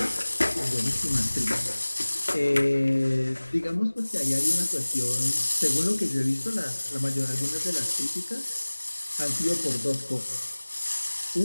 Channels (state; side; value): inverted; both; correlation -1.00